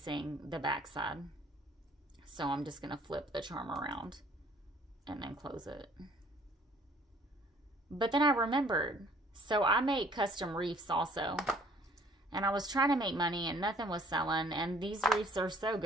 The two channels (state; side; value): normal; both; correlation 0.57